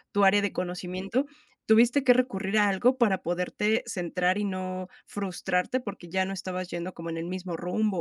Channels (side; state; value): both; identical; correlation 1.00